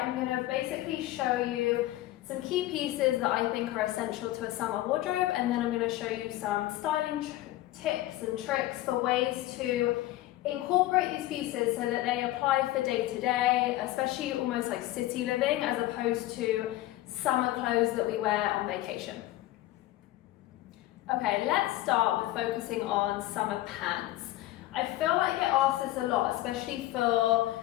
am going to basically show you some key pieces that I think are essential to a summer wardrobe, and then I'm going to show you some styling tips and tricks for ways to incorporate these pieces so that they apply for day to day, especially almost like city living as opposed to summer clothes that we wear on vacation. Okay, let's start with focusing on summer pants. I feel like I get asked this a lot, especially for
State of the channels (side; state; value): right; quieter; 15.9 dB